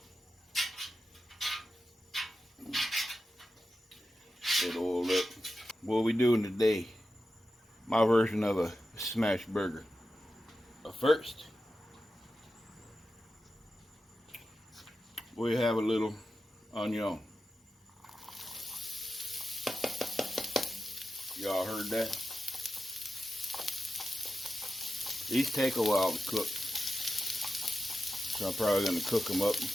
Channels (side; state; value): both; normal; correlation 0.91